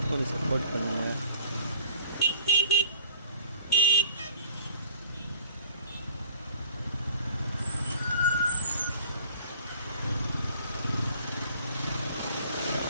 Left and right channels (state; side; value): inverted; both; correlation -0.47